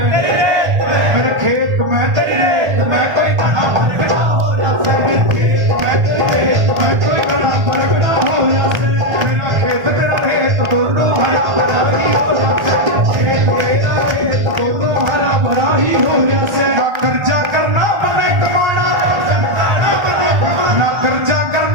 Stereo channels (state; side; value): late; left; 1.3 ms